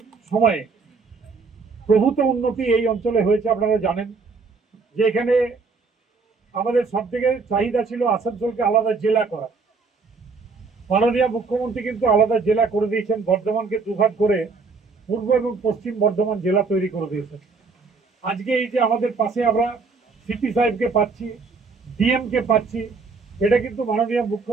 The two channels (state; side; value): quieter; left; 4.4 dB